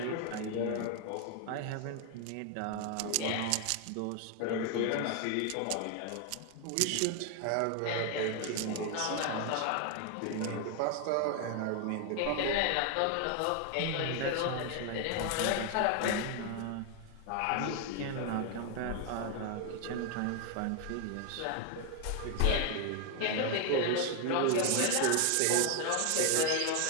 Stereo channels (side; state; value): both; different; correlation 0.00